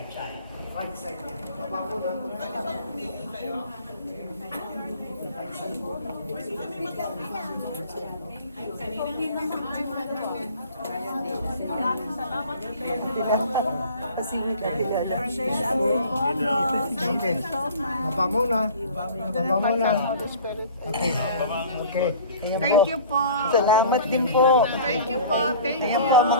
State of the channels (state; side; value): inverted; both; correlation -0.45